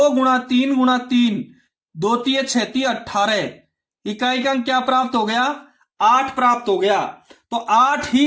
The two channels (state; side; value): identical; both; correlation 1.00